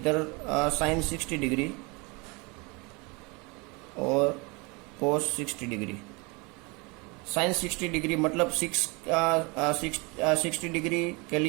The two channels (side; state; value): left; quieter; 28.4 dB